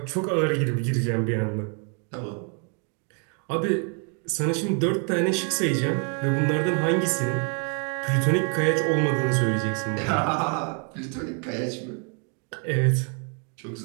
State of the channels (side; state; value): left; quieter; 39.4 dB